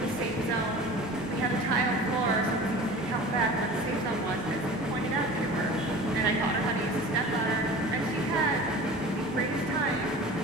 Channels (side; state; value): both; normal; correlation 0.39